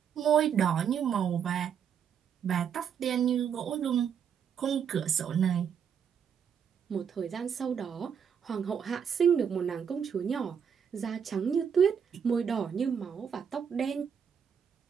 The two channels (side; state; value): left; quieter; 7.6 dB